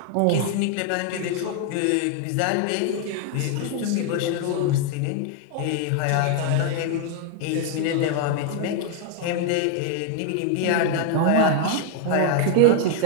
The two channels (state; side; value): different; both; correlation 0.00